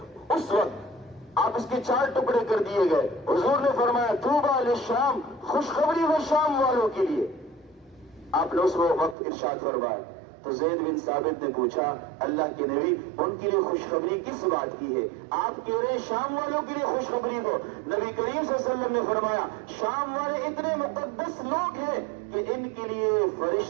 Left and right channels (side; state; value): left; drops out; at 9.2 s